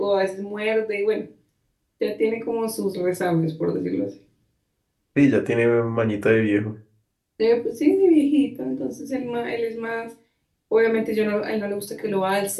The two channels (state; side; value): identical; both; correlation 1.00